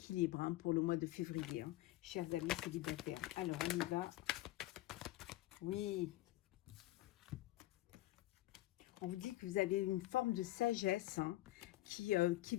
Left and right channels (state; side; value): quieter; right; 16.6 dB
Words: hein, pour le mois de février, hein, chers amis célibataires. Alors, on y va. Oui. On vous dit que vous avez une forme de sagesse, hein, qui